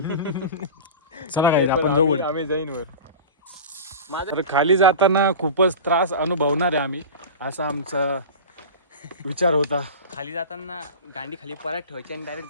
चला गाईज आपण जाऊ वरती. आम्ही जाईन वर. तर खाली जाताना खूपच त्रास अनुभवणार आहे आम्ही असा आमचा विचार होता. खाली जाताना गांडी खाली परत ठेवायची आणि डायरेक्ट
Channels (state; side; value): inverted; both; correlation -0.31